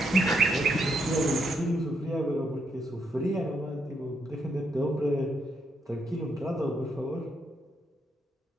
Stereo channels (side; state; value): both; normal; correlation 0.77